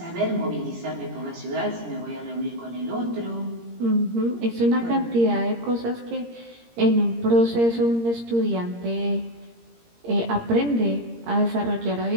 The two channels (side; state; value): left; late; 17 ms